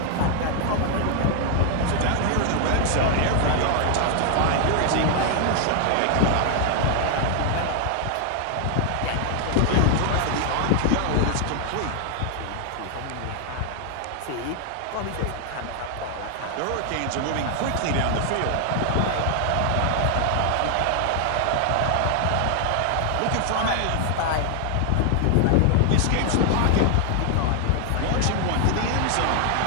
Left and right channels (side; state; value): both; different; correlation 0.00